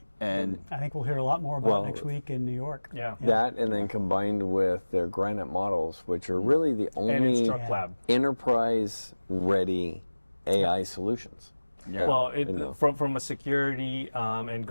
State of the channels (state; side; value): inverted; both; correlation -1.00